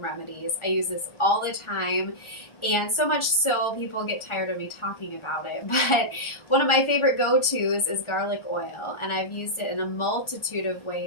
I use this all the time, and so much so people get tired of me talking about it, but one of my favorite go-tos is garlic oil, and I've used it in a multitude of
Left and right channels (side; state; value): right; late; 1.4 ms